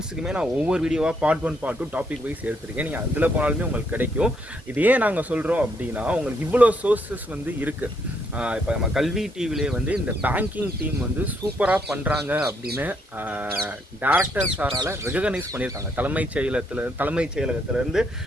நான் ஒவ்வொரு வீடியோவாக பார்ட் 1, பார்ட் 2 டாபிக் வைஸ் எடுத்துருக்கேன். நீங்கள் அதில் போனாலுமே உங்களுக்கு கிடைக்கும். இது ஏன் நாங்கள் சொல்கிறோம் அப்படின்னா, உங்களுக்கு இவ்வளோ சோர்ஸஸ் வந்து இருக்குது. இப்போ நம்ம கல்வி டிவிலே வந்து இந்த பேங்கிங் டீம் வந்து சூப்பராக பண்ணுறாங்க அப்படின்னு டேரக்டர் சாரால் ரெகனைஸ் பண்ணியிருக்காங்க. தலைமைச் செயலகத்திலேருந்து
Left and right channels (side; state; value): both; normal; correlation 0.73